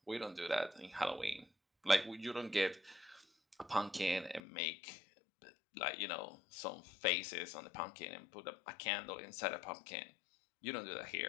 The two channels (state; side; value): drops out; right; at 4.4 s